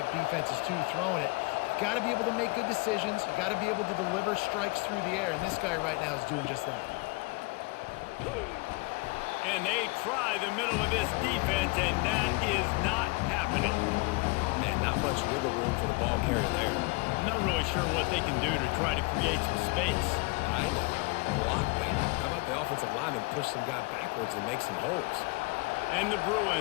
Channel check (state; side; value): quieter; right; 27.0 dB